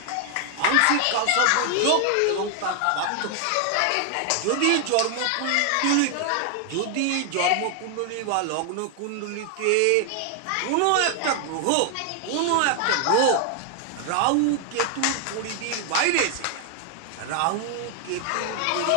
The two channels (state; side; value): different; both; correlation 0.00